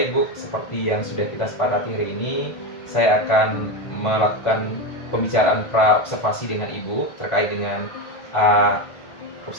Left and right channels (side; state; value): right; late; 1.6 ms